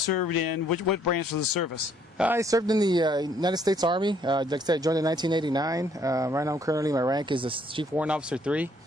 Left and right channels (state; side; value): normal; both; correlation 0.66